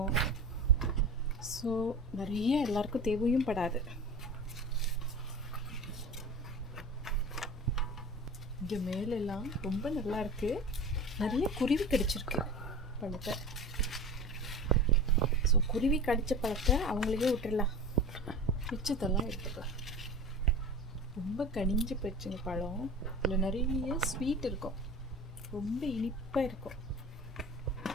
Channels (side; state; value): both; normal; correlation 0.33